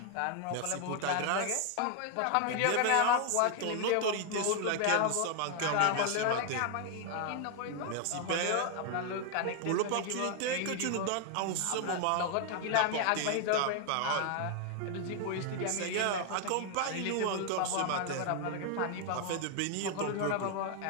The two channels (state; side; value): different; both; correlation 0.00